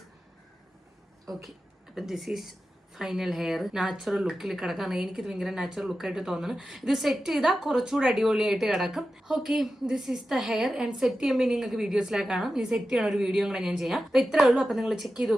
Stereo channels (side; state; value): both; normal; correlation 0.92